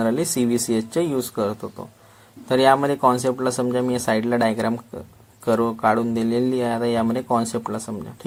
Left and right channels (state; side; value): identical; both; correlation 1.00